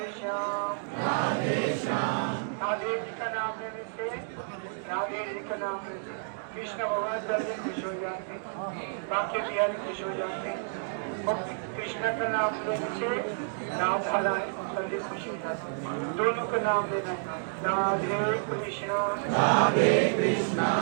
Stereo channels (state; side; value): silent; left; digital silence